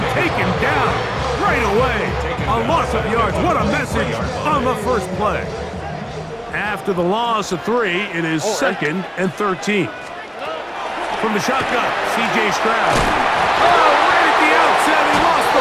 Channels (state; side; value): identical; both; correlation 1.00